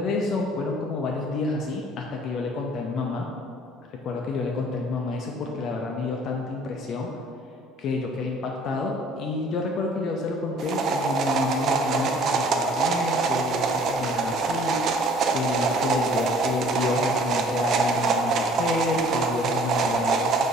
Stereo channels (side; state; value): both; normal; correlation 0.53